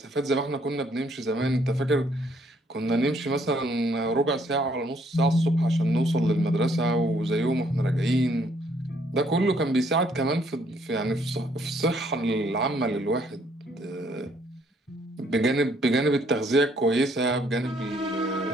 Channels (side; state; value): both; normal; correlation 0.67